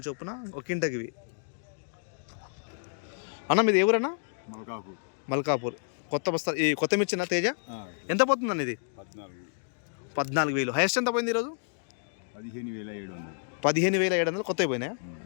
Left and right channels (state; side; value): silent; right; digital silence